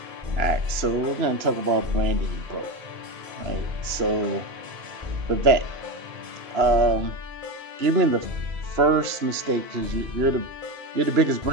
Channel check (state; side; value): late; left; 2.9 ms